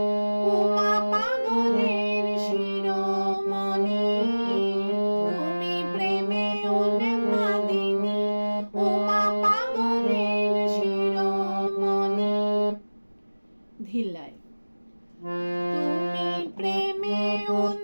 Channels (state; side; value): inverted; both; correlation -1.00